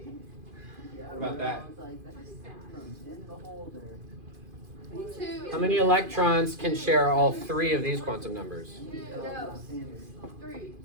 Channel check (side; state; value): left; late; 2.5 ms